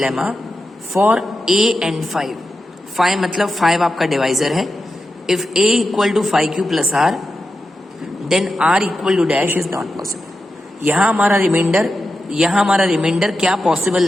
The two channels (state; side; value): normal; both; correlation 0.90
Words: for a and 5 मतलब 5 आपका डिवाइजर है. If a equal to 5q plus r then r equal to dash is not possible. यहाँ हमारा reminder क्या